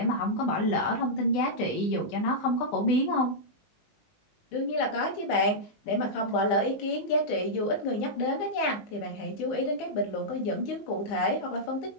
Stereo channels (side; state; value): right; late; 19 ms